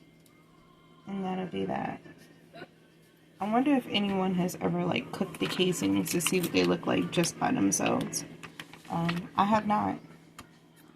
And that'll be that. I wonder if anyone has ever cooked the casings to see what they look like just by themselves. I have not.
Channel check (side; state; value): both; identical; correlation 1.00